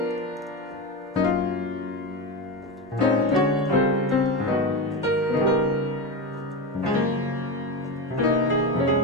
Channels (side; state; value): both; normal; correlation 0.18